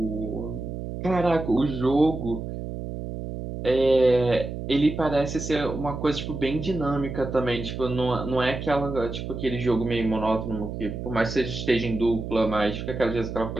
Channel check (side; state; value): right; noise; hum, 7 dB below the sound